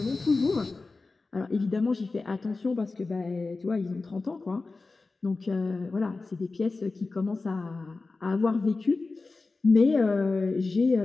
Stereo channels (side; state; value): right; quieter; 3.7 dB